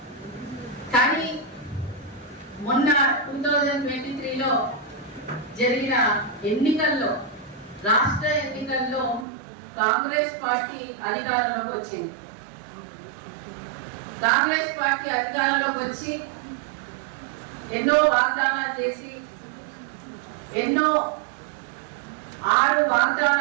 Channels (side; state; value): left; drops out; at 9.2 s